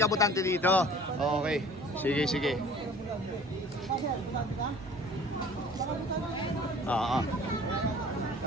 ka butante dito. Okay. Sige. Oo.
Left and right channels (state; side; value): normal; both; correlation 0.48